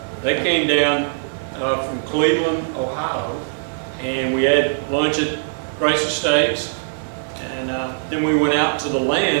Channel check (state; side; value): silent; left; digital silence